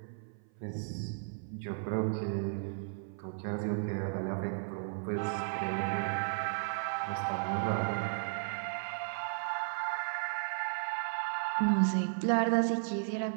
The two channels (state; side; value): silent; left; 55 dB below the other